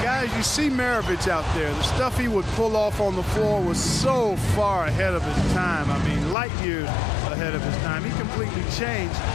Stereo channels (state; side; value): drops out; right; at 6.4 s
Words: Guys, you see Maravich out there. The stuff he would pull off on the floor was so far ahead of his time. I mean, light years ahead of his time. He completely changed